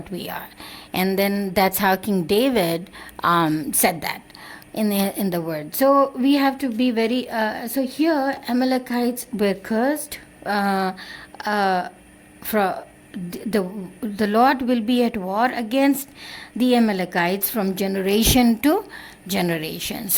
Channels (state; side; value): identical; both; correlation 1.00